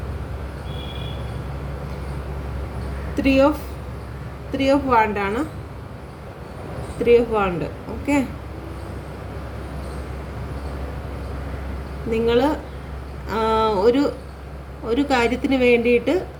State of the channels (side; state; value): both; identical; correlation 1.00